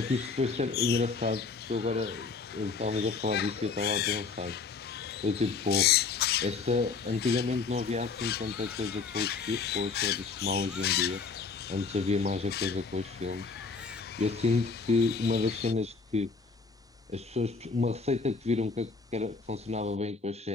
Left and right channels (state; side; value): quieter; right; 4.7 dB